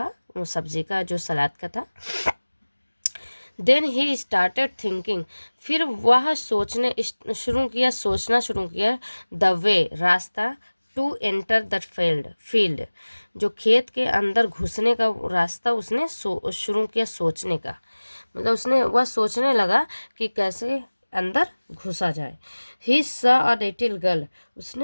वो सब्जी का, जो सलाद का था। देन ही स्टार्टेड थिंकिंग, फिर वह सोचना शुरू किया द वे, रास्ता, टू एंटर द फील्ड, जो खेत के अंदर घुसने का रास्ता उसने शुरू किया सोचने का, मतलब उसने वह सोचने लगा कि कैसे अंदर घुसा जाए। ही सा अ लिटिल गर्ल,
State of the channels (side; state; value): both; inverted; correlation -1.00